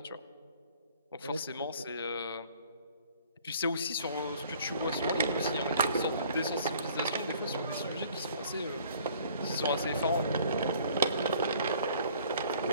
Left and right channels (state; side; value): inverted; both; correlation -0.54